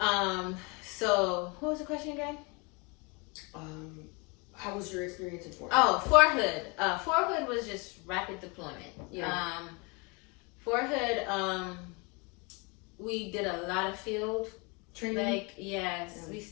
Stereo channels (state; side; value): quieter; right; 30.0 dB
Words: Okay. So what was the question again? How was your experience in Fort Hood? Oh, Fort Hood. Fort Hood was just rapid deployment. Yeah. Fort Hood, we did a lot of field Training. Like, yes, we